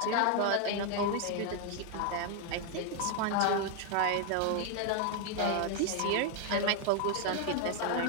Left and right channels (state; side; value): different; both; correlation 0.01